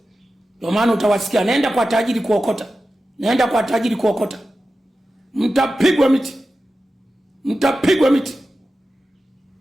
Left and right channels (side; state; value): both; normal; correlation 0.93